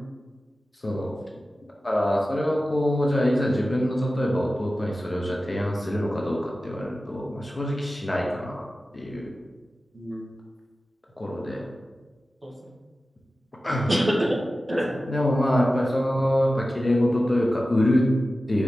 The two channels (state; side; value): normal; both; correlation 0.94